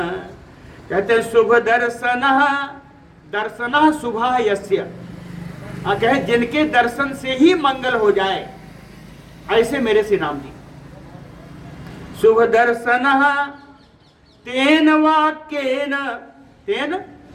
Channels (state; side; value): identical; both; correlation 1.00